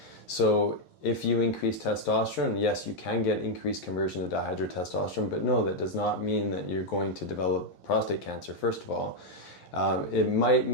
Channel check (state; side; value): late; right; 11 ms